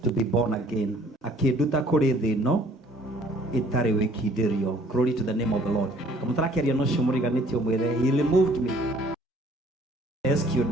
to be born again. Glory to the name of the Lord. He removed me, rescued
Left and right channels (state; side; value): normal; both; correlation 0.58